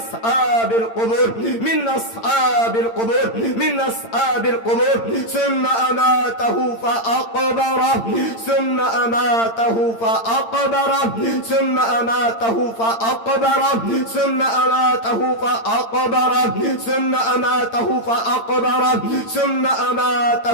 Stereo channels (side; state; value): right; late; 8.8 ms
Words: القبور من أصحاب القبور من أصحاب القبور ثم أماته فأقبره ثم أماته فأقبره ثم أماته فأقبره ثم أماته فأقبره ثم أماته فأقبره ثم